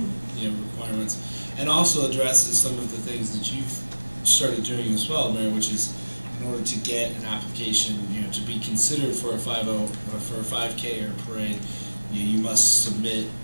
requirements, and also addresses some of the things that you've started doing as well, Mayor, which is in order to get an application, to be considered for a 50 or for a 5K or a parade, you must submit,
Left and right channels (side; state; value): both; inverted; correlation -1.00